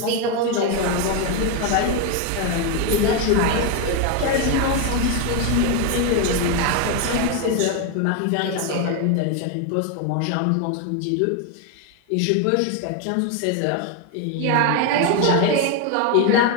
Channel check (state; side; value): different; both; correlation 0.02